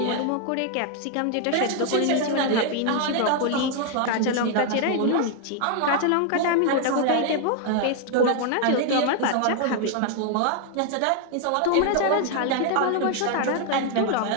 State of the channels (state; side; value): different; both; correlation 0.00